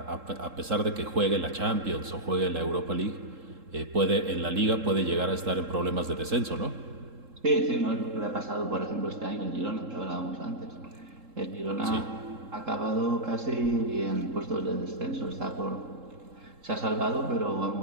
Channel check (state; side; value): late; left; 3.7 ms